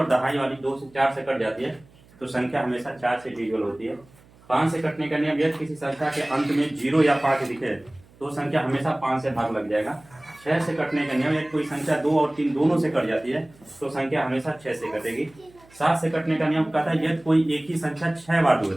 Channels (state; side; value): noise; right; hum, 27 dB below the sound